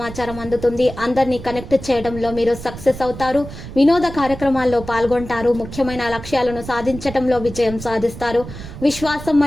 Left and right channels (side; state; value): right; noise; rumble, 12 dB below the sound